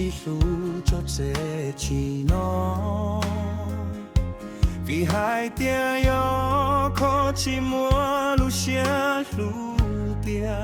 路做这起喏，比海边有可寂寞路线路边，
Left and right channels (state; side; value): identical; both; correlation 1.00